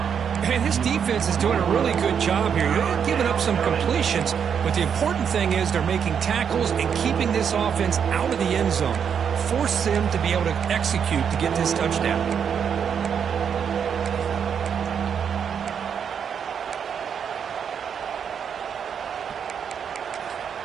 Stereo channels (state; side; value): quieter; left; 7.5 dB